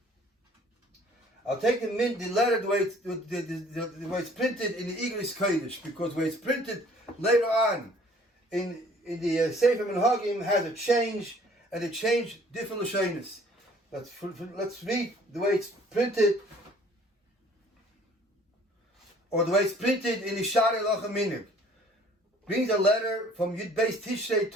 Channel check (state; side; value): normal; both; correlation 0.56